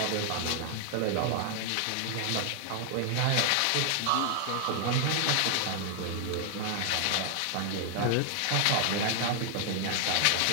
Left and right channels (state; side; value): different; both; correlation 0.00